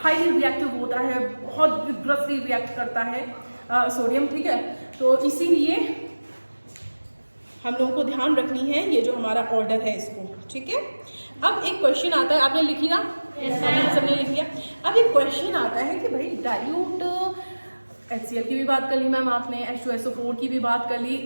रिएक्टिव होता है, बहुत विग्रसली रिएक्ट करता है सोडियम, ठीक है। तो इसीलिए हम लोगों को ध्यान रखनी है ये जो हमारा ऑर्डर है इसको, ठीक है। अब एक क्वेश्चन आता है, आपने लिखी ना, सबने लिख लिया। अब एक क्वेश्चन आता है कि भाई डाइल्यूट HCl की भी बात कर ली मैम आपने, H2SO4 की भी बात कर ली,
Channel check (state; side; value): inverted; both; correlation -1.00